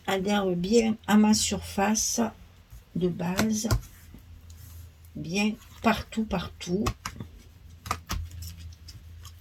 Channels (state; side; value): identical; both; correlation 1.00